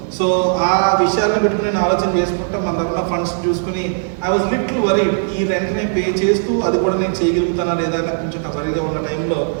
సో ఆ విషయాలను పెట్టుకుని నేను ఆలోచన చేసుకుంటా మన దగ్గర ఫండ్స్ చూసుకుని ఐ వాజ్ లిటిల్ వరీడ్. ఈ రెంట్ని పే చేస్తూ అది కూడా నేను చేయగలుగుతానా లేదా అని కొంచెం వరీగా ఉన్న టైంలో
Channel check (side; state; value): left; silent; digital silence